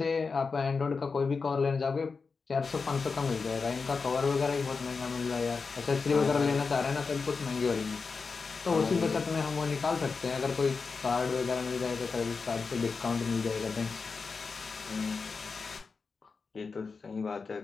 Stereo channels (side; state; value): right; quieter; 4.7 dB